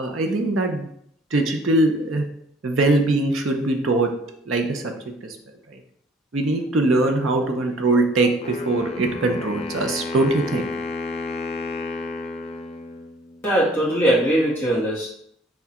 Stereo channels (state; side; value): normal; both; correlation 0.55